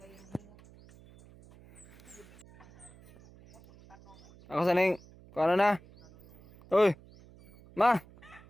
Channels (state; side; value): noise; right; hum, 24 dB below the sound